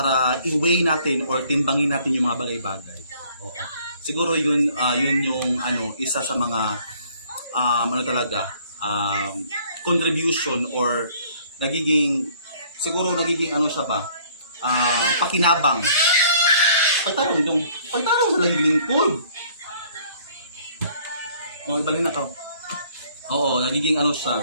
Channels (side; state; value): both; inverted; correlation -0.58